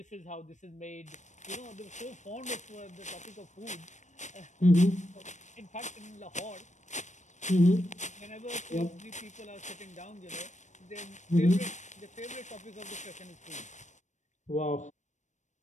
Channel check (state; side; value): late; right; 0.35 ms